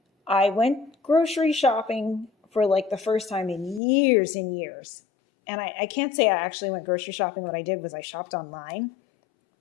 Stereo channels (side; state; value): right; drops out; at 3.8 s